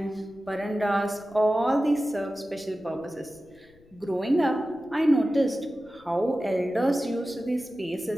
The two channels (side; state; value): left; noise; rumble, 28 dB below the sound